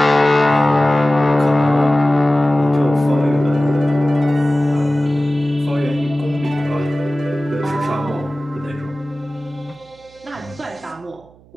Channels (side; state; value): right; noise; hum, 27 dB below the sound